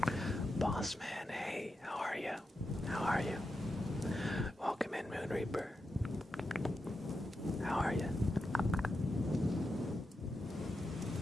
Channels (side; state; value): both; normal; correlation 0.88